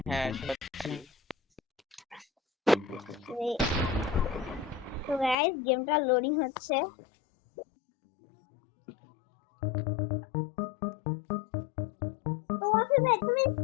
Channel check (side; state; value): right; drops out; at 5.4 s